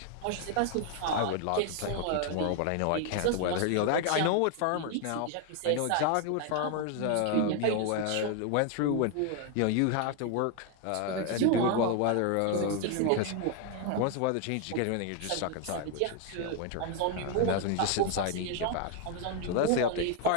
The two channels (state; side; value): different; both; correlation 0.01